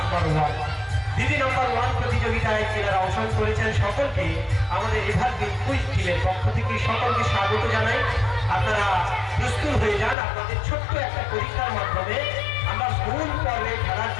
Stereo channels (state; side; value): drops out; right; at 10.2 s